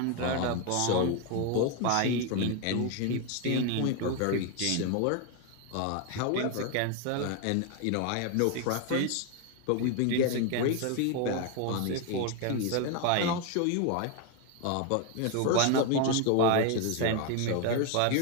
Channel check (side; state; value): both; different; correlation 0.01